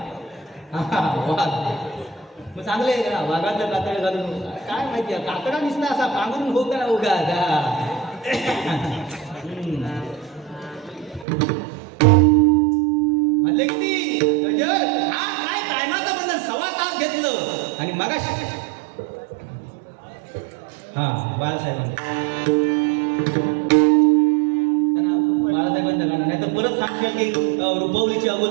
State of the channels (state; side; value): drops out; left; at 11.2 s